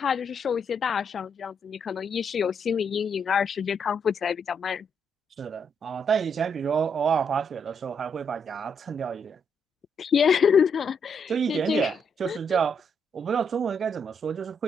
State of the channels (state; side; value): normal; both; correlation 0.76